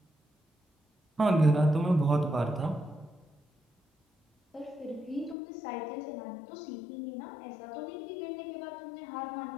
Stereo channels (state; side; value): drops out; right; at 5.4 s